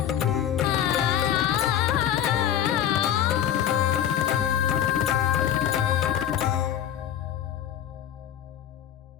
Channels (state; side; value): quieter; right; 10.5 dB